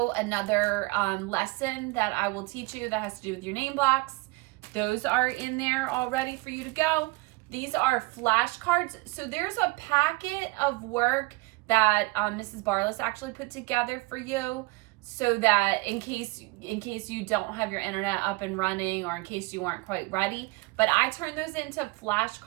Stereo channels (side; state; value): left; quieter; 24.2 dB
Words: another lesson that I will teach you that has to do with your name blocks. Those are in there all ready for you to go. These are flashcards. So there's a packet of work that Mrs. Barless actually put together for you, so that in case you don't have your internet up and running, or in case you weren't quite ready. But I turn those into